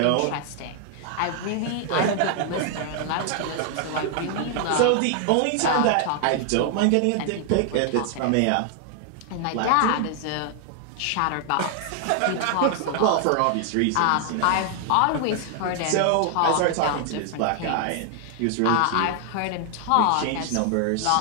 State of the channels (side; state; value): both; different; correlation 0.00